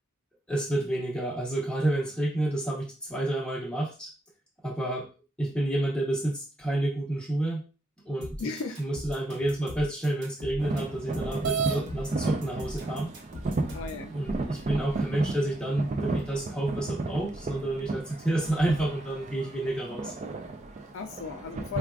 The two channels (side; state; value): both; normal; correlation 0.80